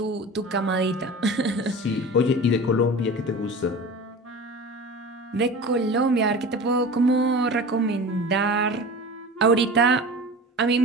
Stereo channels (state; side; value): normal; both; correlation 0.34